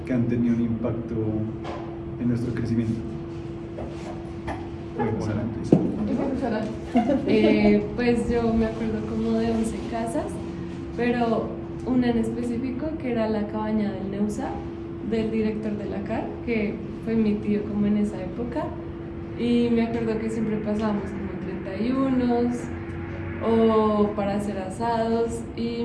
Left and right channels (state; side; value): identical; both; correlation 1.00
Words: que han tenido un impacto en nuestro crecimiento. Bueno, Sara, empieza. Pues yo me acuerdo como de 11 casas, pero una en específico que era la cabaña del Neusa, del director de la CAR, que fue mi tío como en esa época. Y me acuerdo que siempre pasábamos como 31 o para hacer asados. Y